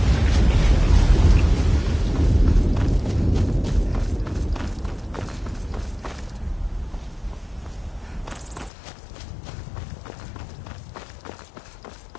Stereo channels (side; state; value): right; drops out; at 8.7 s